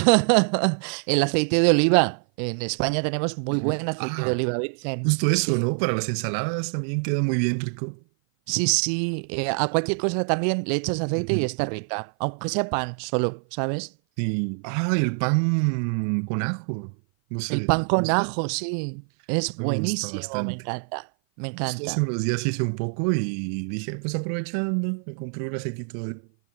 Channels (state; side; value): silent; left; 55 dB below the other